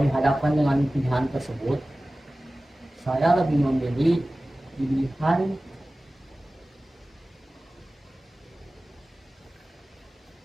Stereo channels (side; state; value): both; normal; correlation 0.97